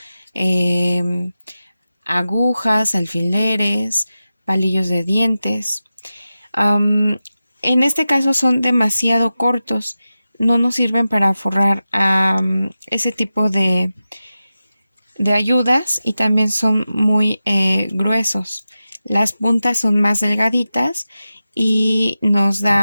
agujas, alfileres, palillos de dientes. En este caso son demasiado cortos, no nos sirven para forrar ese tipo de ayudas, y también son muy gruesos. Las puntas son más delgaditas y nos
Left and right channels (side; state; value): both; inverted; correlation -0.93